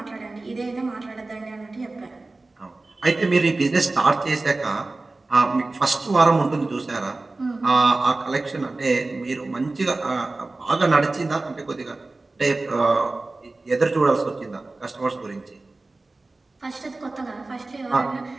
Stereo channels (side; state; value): left; quieter; 3.2 dB